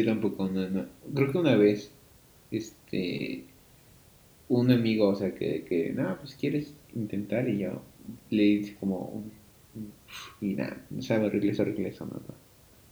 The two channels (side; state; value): both; identical; correlation 1.00